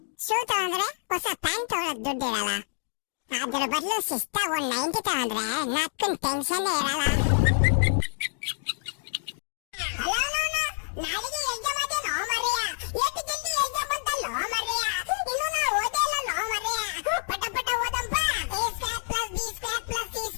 ಶೂ ತಗೊಂಡ್ರೆ ಹೊಸ ಪ್ಯಾಂಟ್ ತಗೊಳಕ್ ದುಡ್ಡಿರಲ್ಲ. ಅದ್ರ ಬದಲು ಶಿಸ್ತಾಗ ಒಂದ್ 90 ತಗೊಂಡ್ರೆ ನಕ್ಕನ್ ಟೆನ್ಷನ್ ಇರಲ್ಲ. ನಾಳೆಗೆ ಎಕ್ಸಾಮ್ ಅದೇನೋ ಮರೆಯ, ಎಷ್ಟು ಜಲ್ದಿ ಎಕ್ಸಾಮ್ ಬಂತಲ್ಲೋ ಮರೆಯ, ಇನ್ನು ನಾ ಓದೇ ಇಲ್ಲ ನೋ ಮರೆಯ. ಪಟ ಪಟ ಓದಂಪ, a² + b² +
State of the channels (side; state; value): right; silent; digital silence